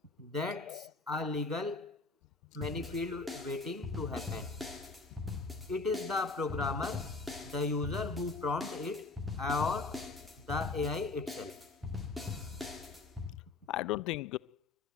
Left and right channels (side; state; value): right; quieter; 3.7 dB